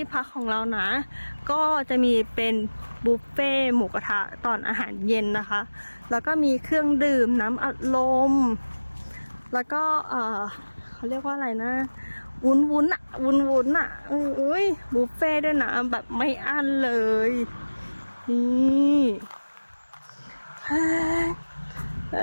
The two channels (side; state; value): both; inverted; correlation -1.00